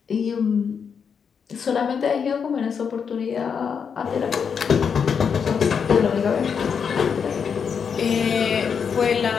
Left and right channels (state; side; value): quieter; right; 6.6 dB